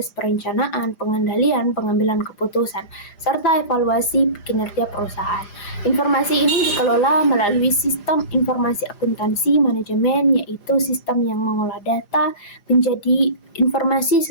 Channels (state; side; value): late; right; 5.0 ms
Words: perencanaan, pengendalian, pengambilan keputusan, serta evaluasi kinerja perusahaan. Informasi ini dikelola melalui sistem informasi akuntansi manajemen, yaitu sistem yang mengolah data menjadi informasi